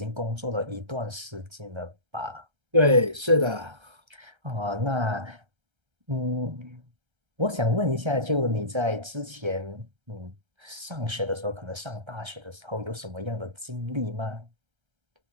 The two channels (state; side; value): late; left; 1.3 ms